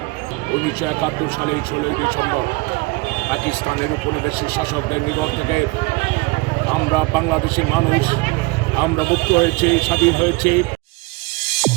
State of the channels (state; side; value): quieter; left; 25.2 dB